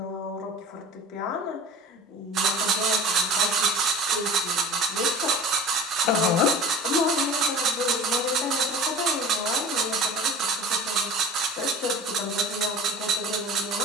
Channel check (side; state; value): both; normal; correlation 0.39